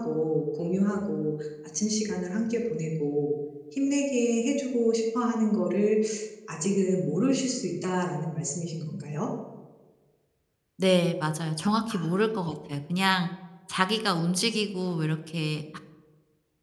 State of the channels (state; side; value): identical; both; correlation 1.00